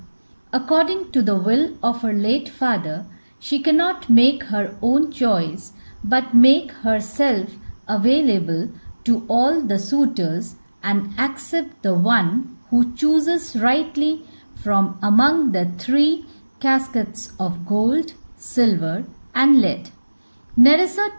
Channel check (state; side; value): inverted; both; correlation -1.00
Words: According to the will of her late father, she cannot make her own choice but make herself available to all the suitors and accept the one who chooses rightly from among the 3 caskets of gold, silver and lead. Nerissa